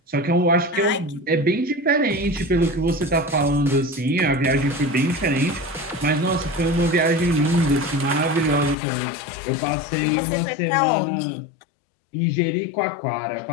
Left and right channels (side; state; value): right; drops out; at 8.8 s